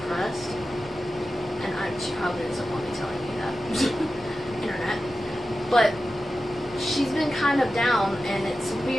and she probably doesn't want me telling you that. Internet. But she's been kind of down, and it's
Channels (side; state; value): both; normal; correlation 0.93